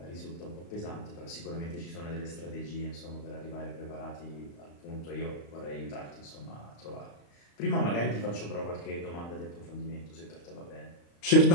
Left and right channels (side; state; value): right; late; 35 ms